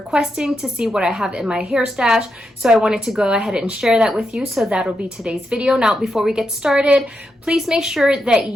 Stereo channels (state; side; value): normal; both; correlation 0.84